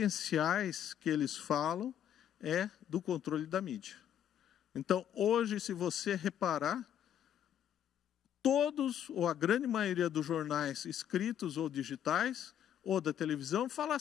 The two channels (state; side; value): quieter; right; 9.9 dB